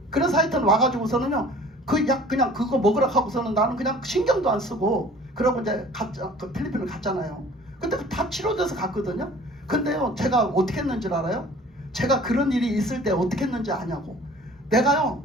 그래서 하여튼 와가지고서는요 그 약 그냥 그거 먹으라 하고서는 나는 그냥 신경도 안 쓰고 그러고 이제 그 필리핀을 갔잖아요. 근데 다 치료돼서 갔거든요. 근데요 제가 어떻게 했는지 알아요? 제가 그런 일이 있을 때 어떻게 했는지 아냐고. 내가요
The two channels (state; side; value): normal; both; correlation 0.49